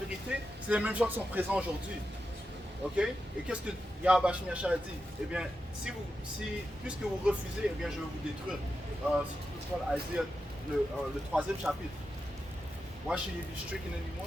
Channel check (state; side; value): normal; both; correlation 0.89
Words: c'est les mêmes gens qui sont présents aujourd'hui. Ok? Et qu'est-ce que Yahweh a dit? Eh bien, puisque vous refusez, eh bien, je vais vous détruire. Si tu peux prendre Isaiah, le 3e chapitre. Why should you be stricken